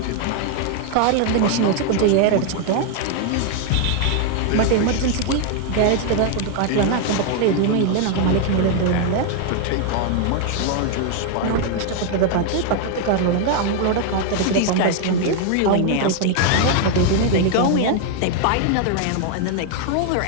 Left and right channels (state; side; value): different; both; correlation 0.00